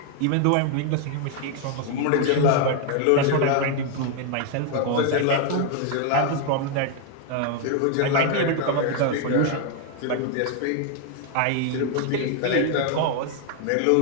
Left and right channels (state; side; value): different; both; correlation 0.00